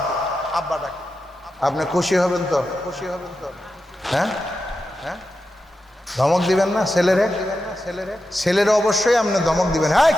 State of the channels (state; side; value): normal; both; correlation 0.90